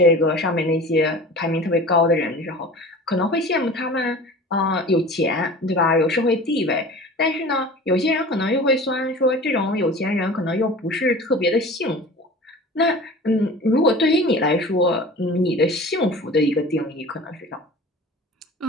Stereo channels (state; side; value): normal; both; correlation 0.39